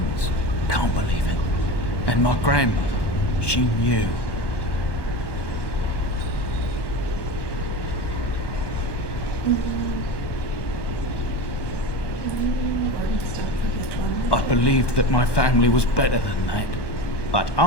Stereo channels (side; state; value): right; late; 1.1 ms